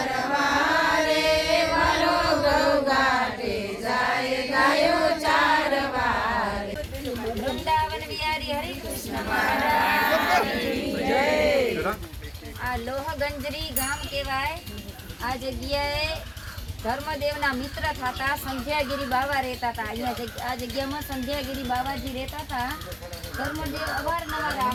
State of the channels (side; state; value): both; identical; correlation 1.00